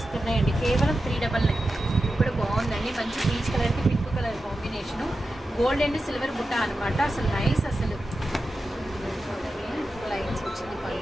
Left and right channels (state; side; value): normal; both; correlation 0.91